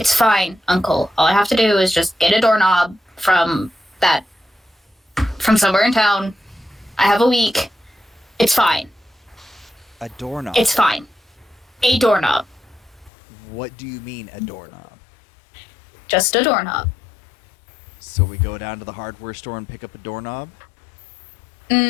fine, Uncle. All I have to do is just get a doorknob from somewhere in town. I have a week. It's fine. A doorknob? It's fine. A doorknob. What do you mean, a doorknob? Just a doorknob. So we go down to the hardware store and pick up a doorknob?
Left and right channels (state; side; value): drops out; right; at 13.1 s